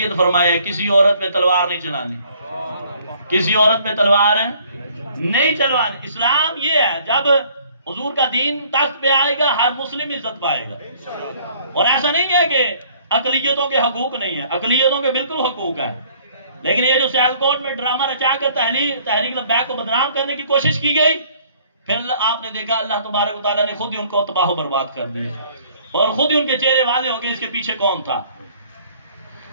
فرمایا ہے کسی عورت پہ تلوار نہیں چلانی، کسی عورت پہ تلوار نہیں چلوانی۔ اسلام یہ ہے جب حضور کا دین تخت پہ آئے گا ہر مسلم عزت پائے گا، اور ایسا نہیں ہے کہ اقلیتوں کے حقوق نہیں ہے، اقلیتوں کے بالکل حقوق ہے۔ لیکن یہ جو سیالکوٹ میں ڈرامہ رچا کر تحریک لبیک کو بدنام کرنے کی کوشش کی گئی، پھر آپ نے دیکھا اللہ تبارک و تعالیٰ نے خود ہی ان کو تباہ و برباد کر دیا، اور خود ہی ان کے چہرے واضح ہو گئے اس کے پیچھے کون تھا۔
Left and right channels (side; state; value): both; inverted; correlation -0.58